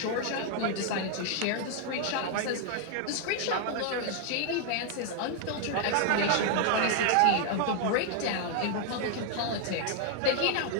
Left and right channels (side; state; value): both; different; correlation 0.00